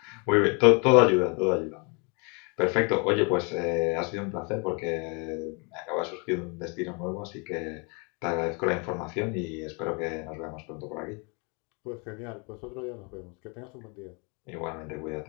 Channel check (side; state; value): right; quieter; 33.5 dB